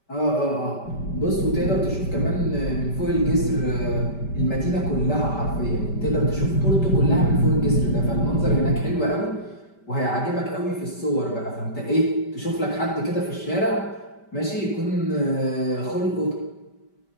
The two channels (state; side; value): late; right; 5.1 ms